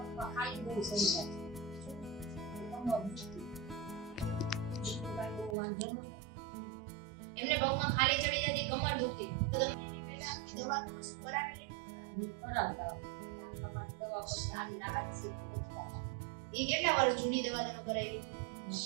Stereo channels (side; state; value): left; drops out; at 5.6 s